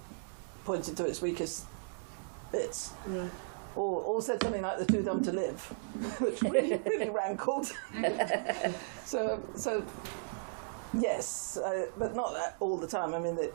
pointed to its weakest bits. Right. Or said something like "they're too dumb to live," which really rankled. So yes, but not all the time. I mean,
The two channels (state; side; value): silent; left; digital silence